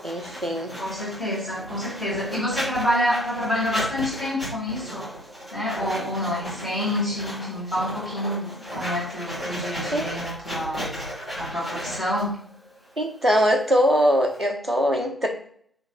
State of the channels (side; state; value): both; normal; correlation 0.62